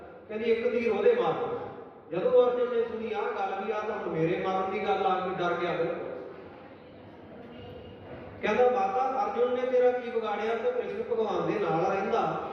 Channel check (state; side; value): identical; both; correlation 1.00